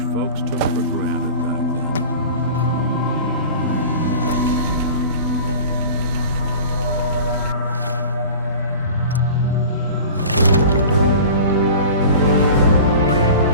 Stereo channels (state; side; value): inverted; both; correlation -0.38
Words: folks took for granted back then.